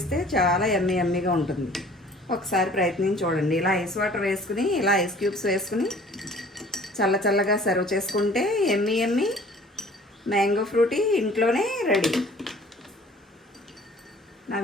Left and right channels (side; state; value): both; normal; correlation 0.51